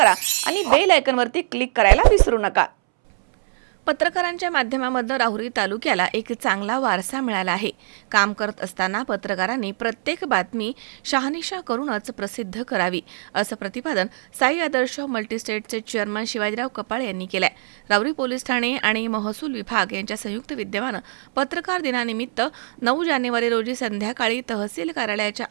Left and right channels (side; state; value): left; silent; 64 dB below the other